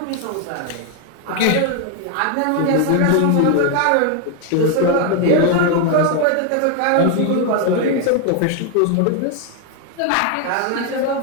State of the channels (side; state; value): both; different; correlation 0.01